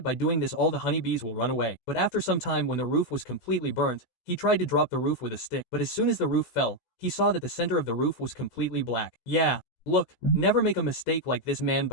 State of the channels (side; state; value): right; late; 16 ms